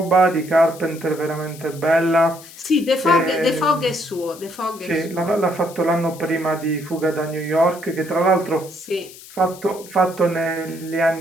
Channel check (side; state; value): left; noise; hiss, 18 dB below the sound